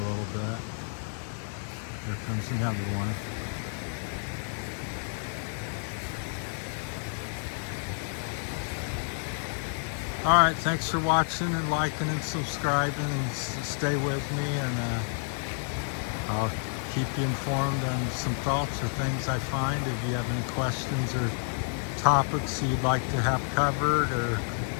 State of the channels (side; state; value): right; silent; 58 dB below the other